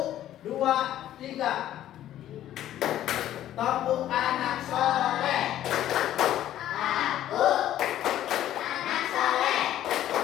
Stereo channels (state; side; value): quieter; right; 12.4 dB